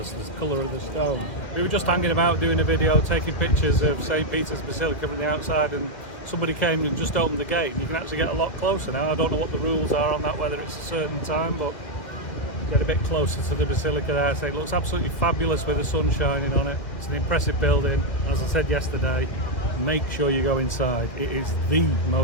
the colour of the stone. We were just hanging about doing a video, taking pictures of St. Peter's Basilica from the outside, and somebody came and just opened the gate and you can actually get a lot closer now. I don't know what the rules are on that, whether it's a certain time, but get a bit closer to the Basilica there. So it looks absolutely fabulous with the sun shining on it. It's an impressive building. As I said yesterday, make sure you go inside. It is the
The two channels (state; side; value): late; right; 2.3 ms